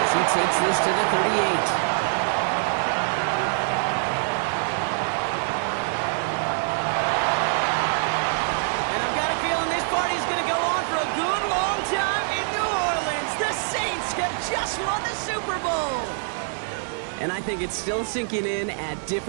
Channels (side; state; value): left; silent; 62 dB below the other